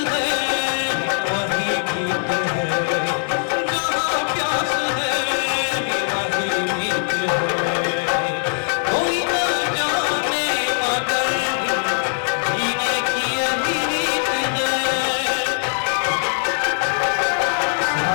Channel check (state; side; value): silent; right; 65 dB below the other